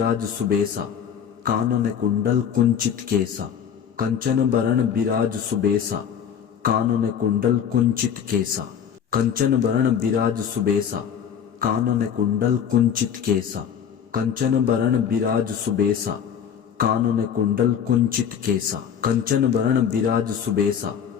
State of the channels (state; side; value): quieter; right; 8.3 dB